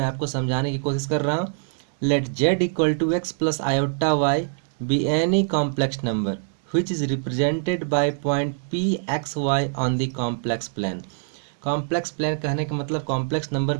आपको समझाने की कोशिश कर रहा हूँ। Let Z equal to X plus iota Y be any complex number which is represented by point p x y on the complex plane। Complex plane कहने का मतलब कॉम्प्लेक्स नंबर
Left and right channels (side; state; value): left; silent; digital silence